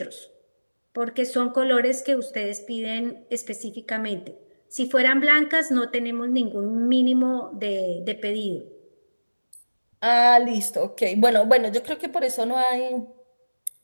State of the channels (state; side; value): inverted; both; correlation -1.00